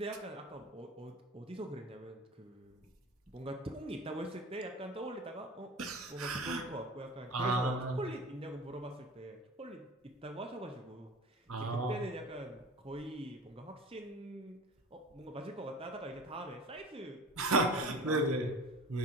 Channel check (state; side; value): normal; both; correlation 0.37